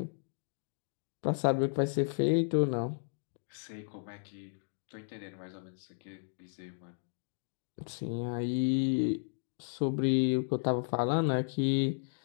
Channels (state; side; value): silent; right; digital silence